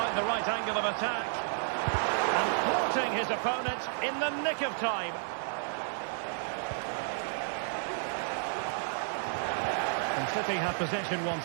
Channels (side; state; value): left; silent; digital silence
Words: the right angle of attack. And thwarting his opponent in the nick of time. And City have possession